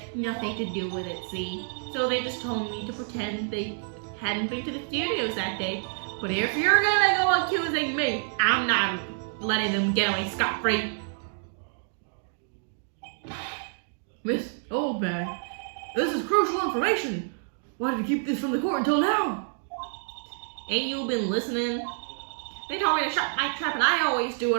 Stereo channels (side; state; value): left; silent; 59 dB below the other